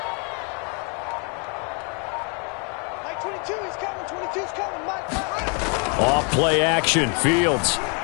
Off play action, Fields.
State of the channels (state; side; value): quieter; right; 36.8 dB